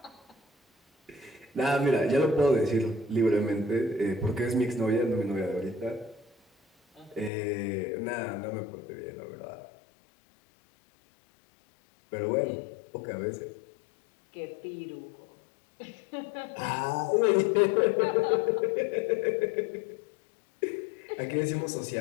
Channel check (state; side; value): drops out; right; at 7.3 s